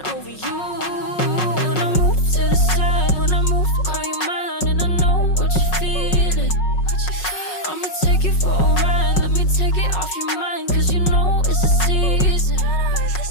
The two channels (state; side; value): late; right; 5.4 ms